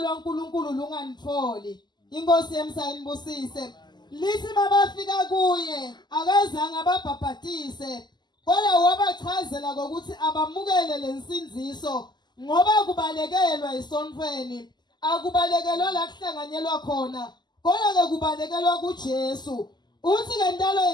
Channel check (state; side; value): late; right; 0.21 ms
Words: lunganitholi. Inkosi yemsayinibusise. Lithi mabafika kuye akazange ababhaphathise, kodwa wabachazela ukuthi abamukele lensinziso ngoba kubalekelwa esontweni. Akubalekelwa la kuhlanganyelwa khona, kodwa ke kubalekelwa kuJesu. Uthi ke ntalo